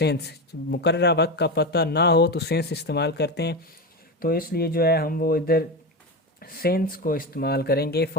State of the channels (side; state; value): both; normal; correlation 0.18